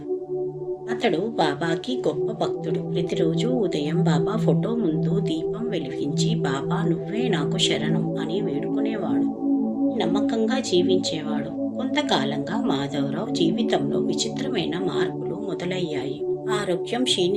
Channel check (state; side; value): identical; both; correlation 1.00